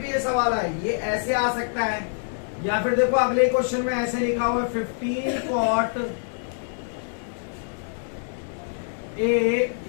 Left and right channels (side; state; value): right; silent; digital silence